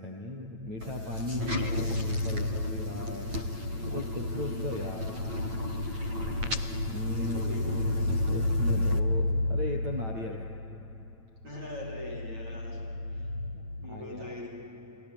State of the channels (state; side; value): late; left; 9.0 ms